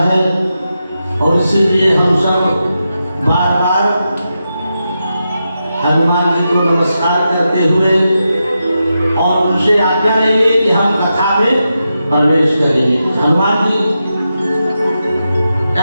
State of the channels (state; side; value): inverted; both; correlation -0.88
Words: है, और इसीलिए हम सब बार बार हनुमान जी को नमस्कार करते हुए और उनसे आज्ञा लेंगे कि हम कथा में प्रवेश करेंगे। हनुमान जी